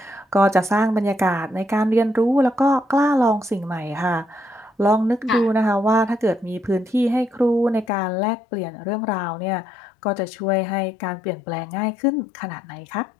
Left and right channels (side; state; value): right; drops out; at 7.9 s